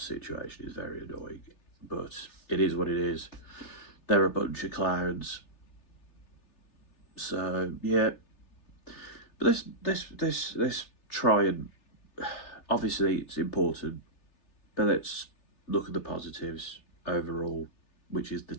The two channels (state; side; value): late; right; 3.3 ms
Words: is very annoying, but it is what it is. They're a bunch of clowns. So yeah, but let's try and, obviously it's important, but let's look at the positives overall, which is the